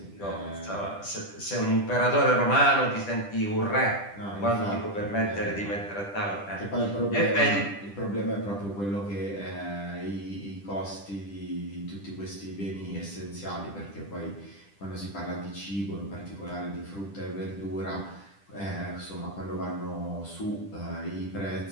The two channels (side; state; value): right; late; 10 ms